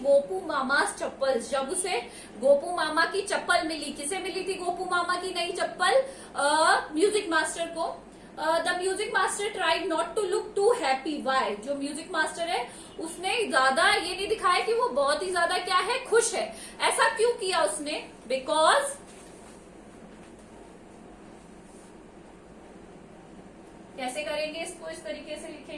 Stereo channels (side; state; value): both; identical; correlation 1.00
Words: mama's chappals. जब उसे गोपू मामा की चप्पल मिली, किसे मिली थी गोपू मामा की नई चप्पल, म्यूजिक मास्टर को। The music master tried not to look too happy. Why, जो म्यूजिक मास्टर है उसने ज्यादा ये नहीं दिखाया कि वो बहुत ही ज्यादा क्या है, खुश है। ऐसा क्यों किया उसने, बिकॉज कैसे करेंगे इसको? इस तरीके से